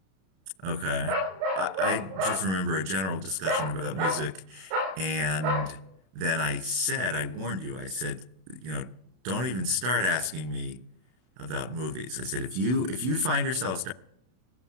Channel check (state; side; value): late; left; 32 ms